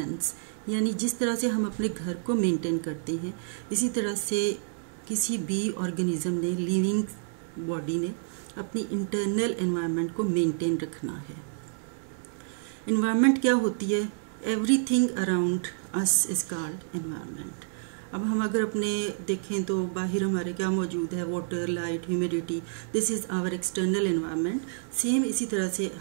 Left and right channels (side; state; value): left; silent; digital silence